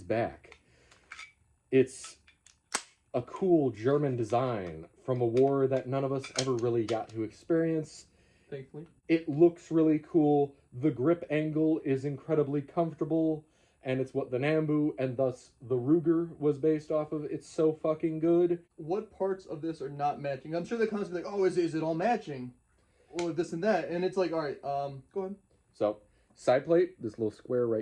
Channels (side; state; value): both; identical; correlation 1.00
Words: back. It's a cool German design from a war that none of us ever really got to experience. Thankfully. It looks really cool. The grip angle is incredibly comfortable, and it's what the Nambu and thus the Ruger was based off of. It's so fucking good. What parts of this are not matching? I'm sure they're constantly like, oh, is it all matching? Or this and that. And it's like, all right, go ahead. So, side plate, this little square